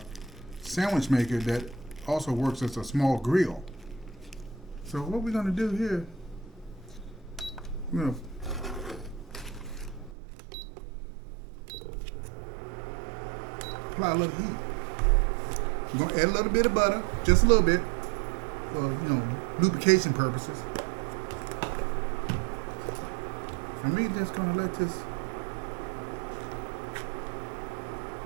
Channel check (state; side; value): drops out; left; at 10.2 s